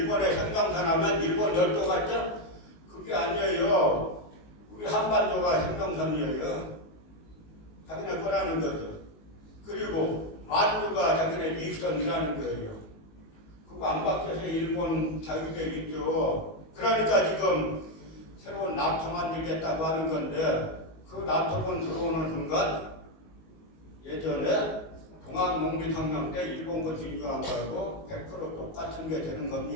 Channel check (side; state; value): right; late; 19 ms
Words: 생명산 하면 일본 열도 같죠? 그게 아니에요. 우리 한반도가 생명선이에요. 자기네 거라는 거죠. 그리고 만주가 자기네 이익선이라는 거예요. 그거 안 바뀌어서 일본 자유대 있죠. 그러니까 지금 새로운 나토 만들겠다고 하는 건데 그 나토군 들어오는 순간 예전에 동학농민혁명 때 일본군 진주한 거하고 100% 똑같은 게 되는